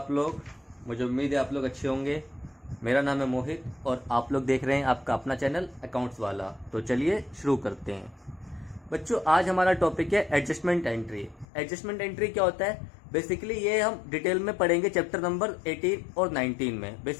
लोग। मुझे उम्मीद है आप लोग अच्छे होंगे। मेरा नाम है मोहित और आप लोग देख रहे हैं आपका अपना चैनल अकाउंट्स वाला। तो चलिए शुरू करते हैं। बच्चों, आज हमारा टॉपिक है एडजस्टमेंट एंट्री। एडजस्टमेंट एंट्री क्या होता है? बेसिकली ये हम डिटेल में पढ़ेंगे चैप्टर नंबर 18 और 19 में।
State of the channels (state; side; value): drops out; right; at 11.5 s